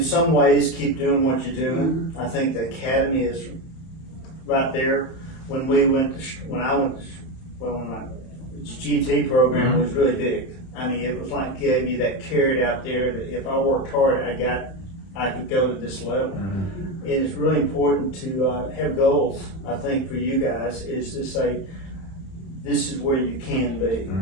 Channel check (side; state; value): right; late; 31 ms